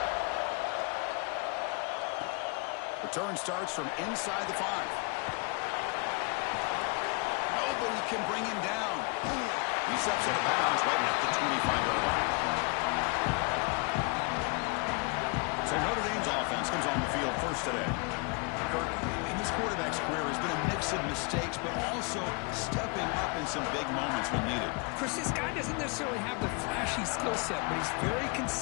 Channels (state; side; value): quieter; right; 32.1 dB